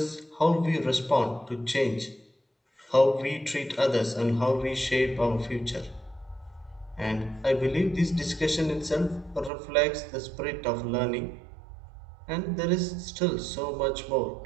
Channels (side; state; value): left; drops out; at 9.5 s